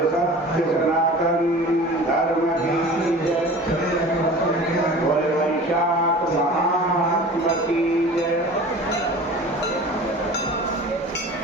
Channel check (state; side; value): normal; both; correlation 0.40